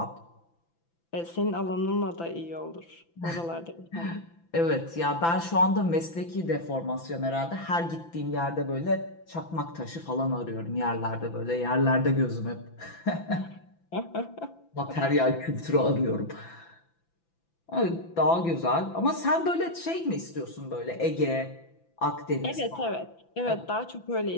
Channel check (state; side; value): late; right; 5.9 ms